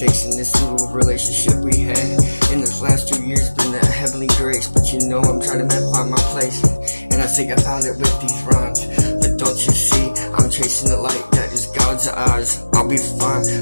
in this little relationship we had. In this last 2 years, been a heavenly grace, but I'm trying to find my place, and I think I found it with these rhymes. But don't you see, I'm chasing the light that is God's eyes. I'll be fine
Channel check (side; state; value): both; inverted; correlation -1.00